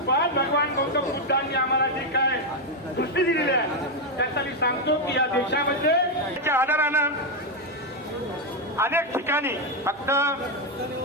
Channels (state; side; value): normal; both; correlation 0.04